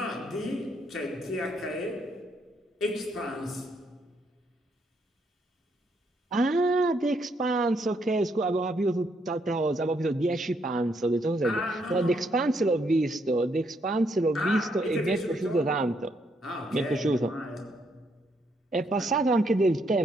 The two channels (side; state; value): both; normal; correlation 0.74